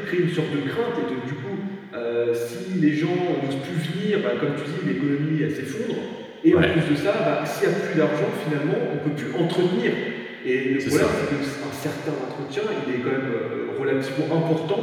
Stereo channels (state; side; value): identical; both; correlation 1.00